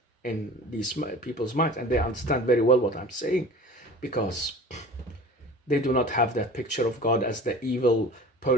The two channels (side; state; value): both; normal; correlation 0.40